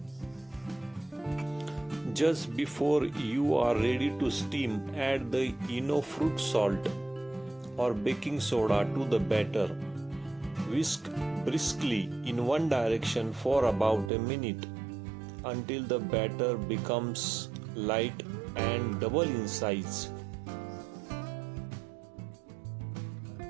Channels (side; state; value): left; drops out; at 14.1 s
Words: Just before you are ready to steam, add the fruit salt or baking soda to the batter. Whisk briskly in one direction for about a minute until the batter becomes light and double in size.